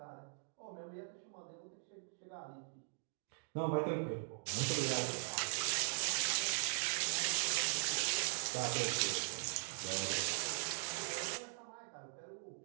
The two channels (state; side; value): silent; left; digital silence